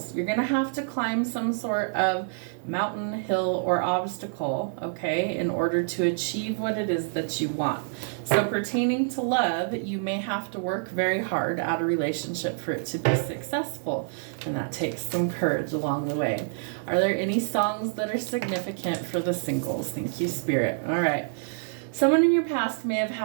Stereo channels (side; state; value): left; silent; 60 dB below the other